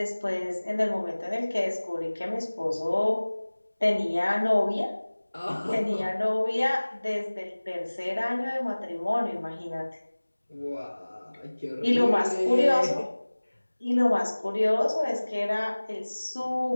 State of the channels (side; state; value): both; inverted; correlation -1.00